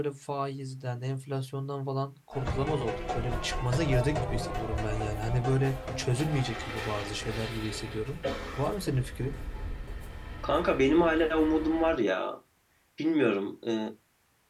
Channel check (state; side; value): identical; both; correlation 1.00